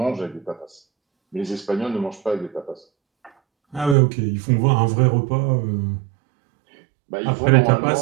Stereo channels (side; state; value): left; drops out; at 4.0 s